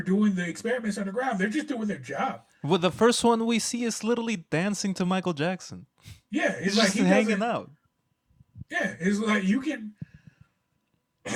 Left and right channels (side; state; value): both; identical; correlation 1.00